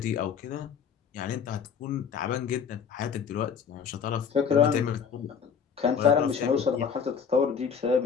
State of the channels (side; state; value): right; quieter; 6.9 dB